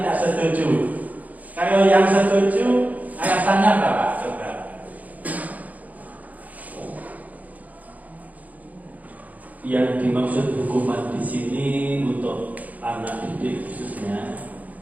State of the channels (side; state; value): left; late; 0.077 ms